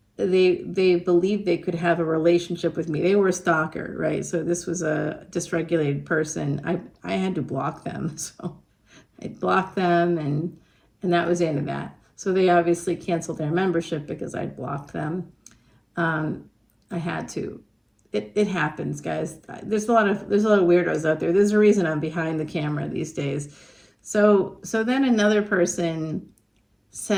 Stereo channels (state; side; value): identical; both; correlation 1.00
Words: they believed they could have a relationship with me. They were a stalker, right? So this was a dysregulated person. I had to block them. So I blocked them and that was the end of that. So they obviously canceled their membership because I blocked them. I had to. It happens, guys. There's a lot of weirdos out there. There's a reason I'm behind the camera these days. So then another person